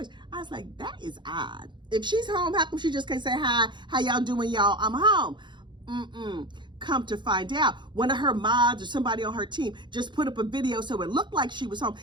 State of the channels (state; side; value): late; left; 0.23 ms